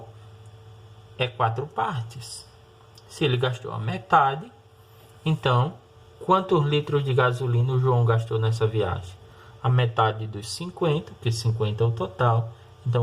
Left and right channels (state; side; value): identical; both; correlation 1.00